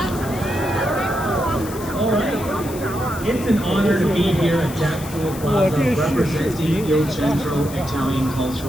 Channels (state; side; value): noise; left; hiss, 15 dB below the sound